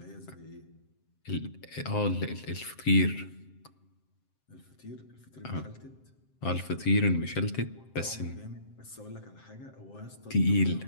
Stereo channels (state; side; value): late; right; 7.7 ms